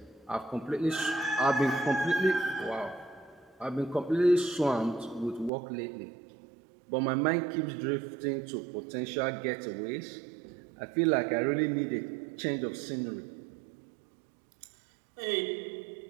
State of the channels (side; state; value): left; drops out; at 5.5 s